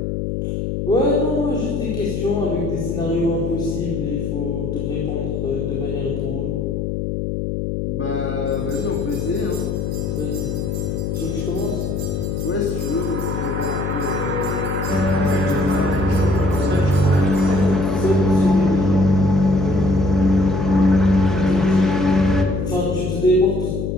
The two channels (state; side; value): noise; left; hum, 2 dB below the sound